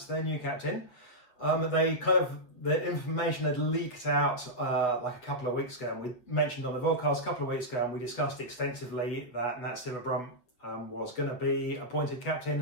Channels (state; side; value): late; right; 8.5 ms